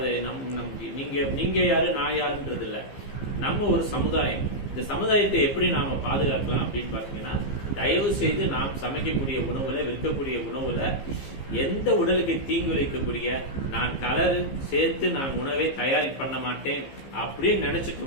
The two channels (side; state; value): right; late; 15 ms